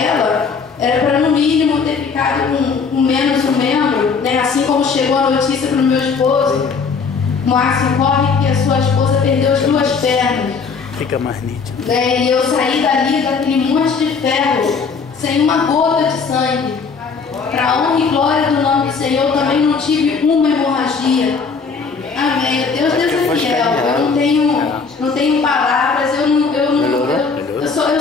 era para no mínimo ter ficado com menos um membro, né? Assim como chegou a notícia para o meu esposo, Márcio, corre que a sua esposa perdeu as 2 pernas. Fica mais nítido. E eu saí dali daquele monte de ferro, sem uma gota de sangue. Para a honra e glória do nome do Senhor, eu também não tive uma hemorragia. Amém. Deus é fiel. Eu não tenho palavras, eu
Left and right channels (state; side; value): quieter; right; 5.2 dB